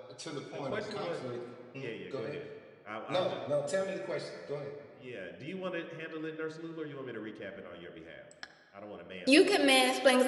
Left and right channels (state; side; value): identical; both; correlation 1.00